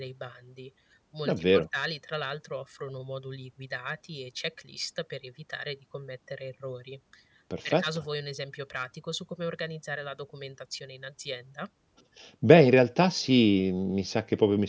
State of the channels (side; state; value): both; identical; correlation 1.00